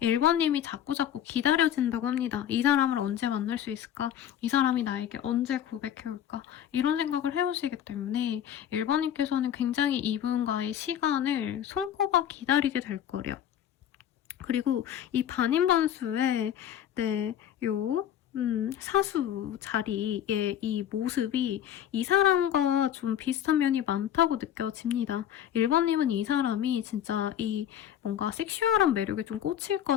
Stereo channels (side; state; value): right; quieter; 10.5 dB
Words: 자꾸자꾸 기다려진다고 합니다. 이 사람을 언제 만날 수 있을까? 이 사람이 나에게 언제 고백해올까? 이런 생각을 해오시기 때문에 1번님께서는 굉장히 이분과의 시간을 손꼽아 기다리게 될 거래요. 그리고 이 반인반수의 사수 자리의 이 모습이 이 사람과 좀 비슷한 면이 많다고 느껴집니다. 1번님은 이 사람이 진짜 이 뭔가 섹슈얼한 매력에 좀 꽂힐